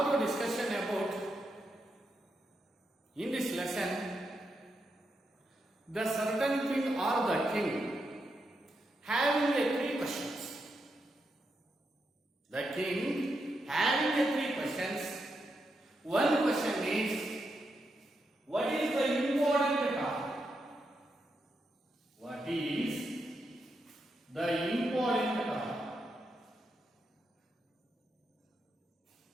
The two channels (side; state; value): both; normal; correlation 0.84